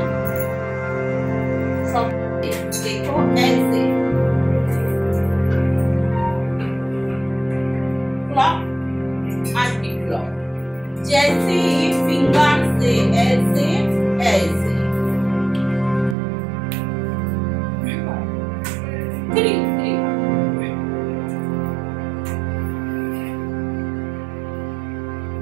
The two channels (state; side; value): drops out; left; at 16.2 s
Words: সব देखो ऐसे क्लॉक एंटी क्लॉक, जैसे फिंगर से ऐसे ऐसे 3